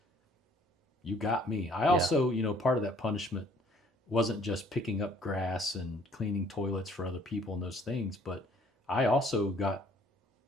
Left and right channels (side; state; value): both; normal; correlation 0.59